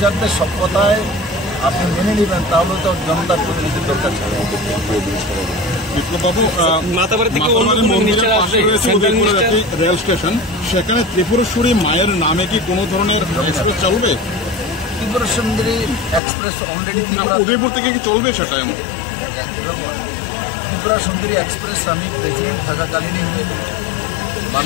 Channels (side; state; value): right; drops out; at 16.2 s